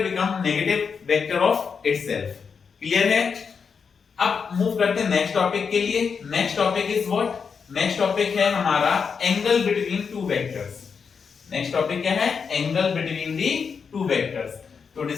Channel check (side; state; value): right; quieter; 5.9 dB